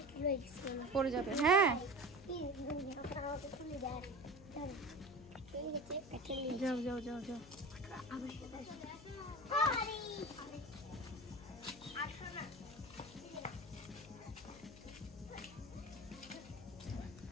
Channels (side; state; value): left; noise; hum, 18 dB below the sound